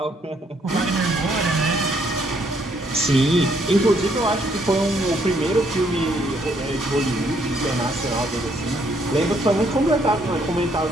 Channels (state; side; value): normal; both; correlation 0.70